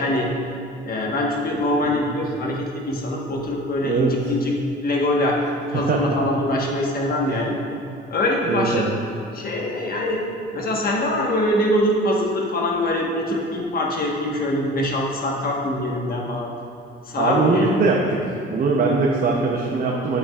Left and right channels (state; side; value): normal; both; correlation 0.39